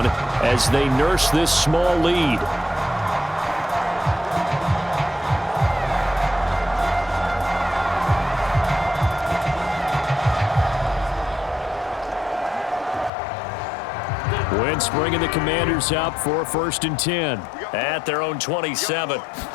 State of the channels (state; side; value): drops out; right; at 13.1 s